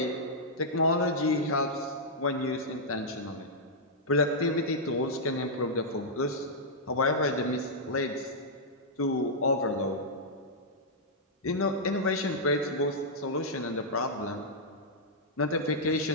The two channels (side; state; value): both; normal; correlation -0.09